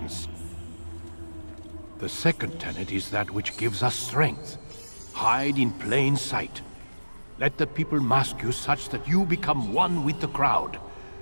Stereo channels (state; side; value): inverted; both; correlation -1.00